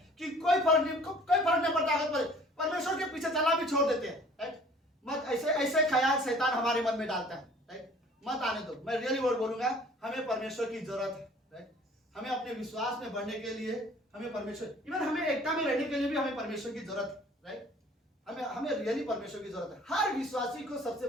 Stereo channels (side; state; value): both; normal; correlation 0.52